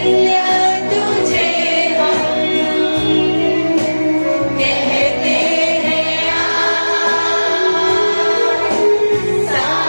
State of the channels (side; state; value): both; inverted; correlation -1.00